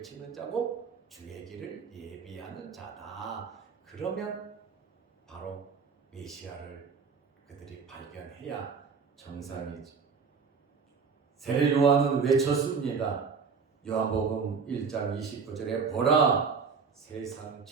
자고 주의 길을 예비하는 자다. 그러면 바로 메시아를 그들이 발견해야 정상이지. 세례 요한은 외쳤습니다. 요한복음 1장 29절에 보라 세상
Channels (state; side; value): quieter; left; 5.6 dB